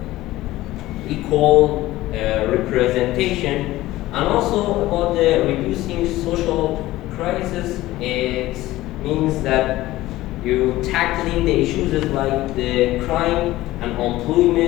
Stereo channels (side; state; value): right; quieter; 16.7 dB